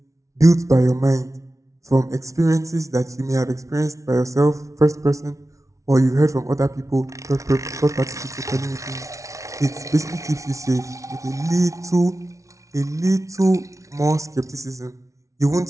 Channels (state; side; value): late; left; 0.15 ms